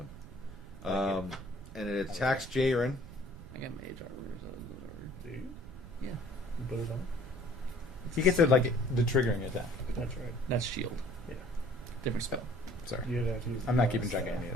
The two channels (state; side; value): noise; right; rumble, 15 dB below the sound